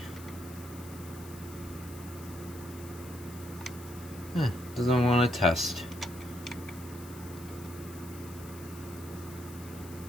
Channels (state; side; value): noise; left; hiss, 17 dB below the sound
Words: Doesn't want to test.